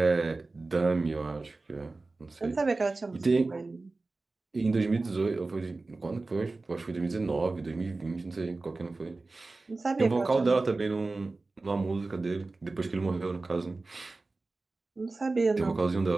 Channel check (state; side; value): quieter; left; 3.4 dB